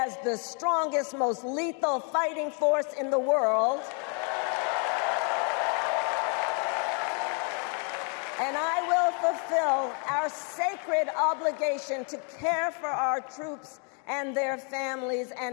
the strongest, most lethal fighting force in the world, and I will fulfill our sacred obligation to care for our troops and their families,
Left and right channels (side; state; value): right; quieter; 39.3 dB